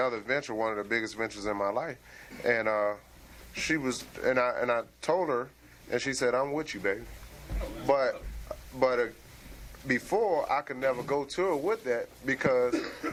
venture, one of the biggest ventures in my life, and she was, and I told her, and she said, "I'm with you, baby." But before, I could never go to her with that, because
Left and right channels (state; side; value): identical; both; correlation 1.00